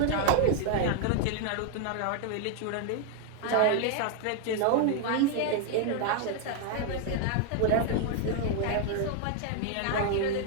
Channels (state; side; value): different; both; correlation 0.00